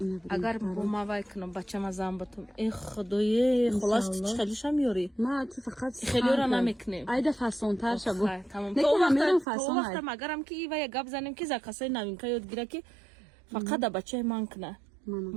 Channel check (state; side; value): drops out; left; at 9.5 s